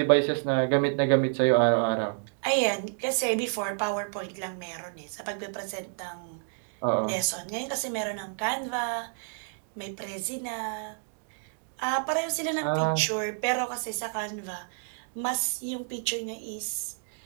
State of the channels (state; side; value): silent; left; digital silence